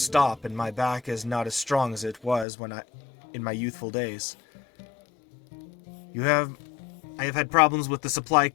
and my back is not as strong as it was in my youthful days. I have had problems with the supply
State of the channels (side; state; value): right; drops out; at 2.5 s